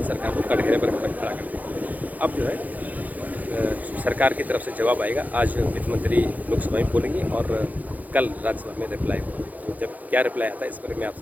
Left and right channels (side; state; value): left; late; 0.080 ms